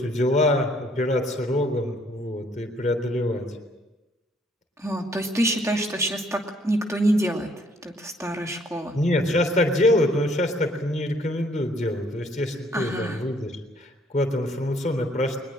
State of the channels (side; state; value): both; normal; correlation 0.64